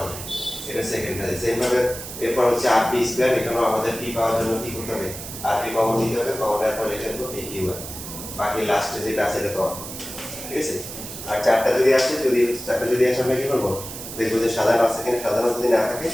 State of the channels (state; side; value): noise; right; hiss, 10 dB below the sound